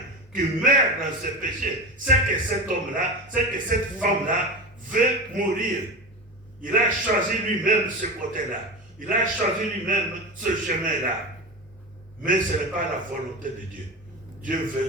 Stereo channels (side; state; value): both; normal; correlation 0.25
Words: qui meurt dans ses péchés, c'est que cet homme-là, c'est que cette femme-là veut mourir. Il a choisi lui-même ce côté-là. Il a choisi lui-même ce chemin-là. Mais ce n'est pas la volonté de Dieu. Dieu